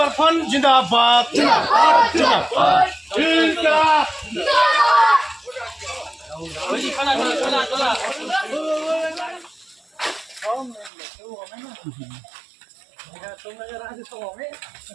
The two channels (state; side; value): drops out; left; at 10.9 s